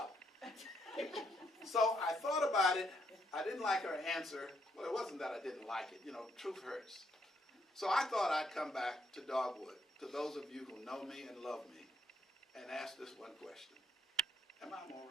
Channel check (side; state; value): both; normal; correlation 0.74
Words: So I thought about it. I didn't like her answer. Well, it wasn't that I didn't like it. You know, truth hurts. So I thought I'd come back to Dogwood, to those of you who know me and love me, and ask this one question. Am I a